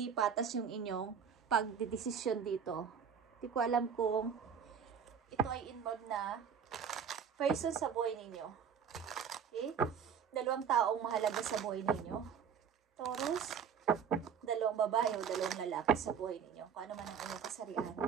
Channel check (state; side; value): quieter; left; 7.3 dB